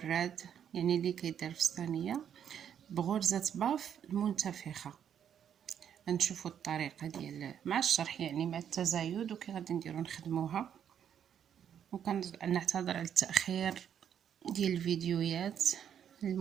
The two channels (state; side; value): quieter; left; 8.9 dB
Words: يعني اللي كيدار في الصينيه بغرزه باف المنتفخه. غنشوفوا الطريقه ديال مع الشرح، يعني مع التزايد وكي غادي نديرو نخدموها. وكنعتذر على التاخير ديال الفيديوهات